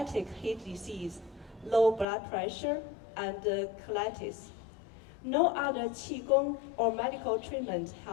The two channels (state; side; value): drops out; right; at 2.1 s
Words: heart disease, low blood pressure, and colitis. No other Qigong or medical treatment